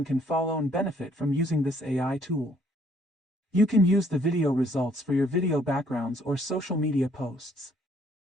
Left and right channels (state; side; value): normal; both; correlation 0.65